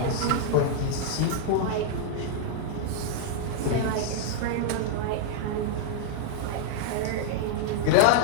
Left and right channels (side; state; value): both; different; correlation -0.01